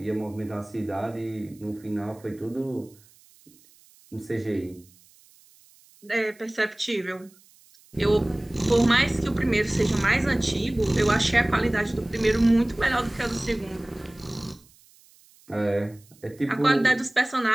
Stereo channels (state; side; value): noise; right; hiss, 28 dB below the sound